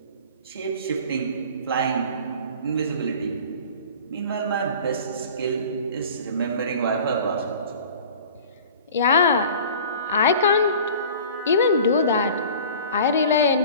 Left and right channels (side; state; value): both; inverted; correlation -0.43